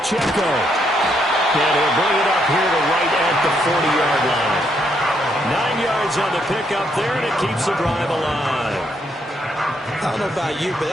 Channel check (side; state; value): both; normal; correlation 0.75